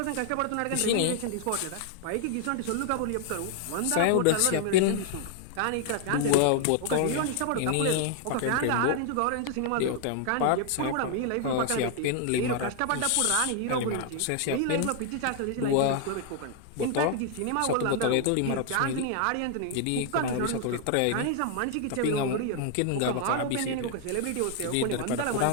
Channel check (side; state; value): both; different; correlation 0.00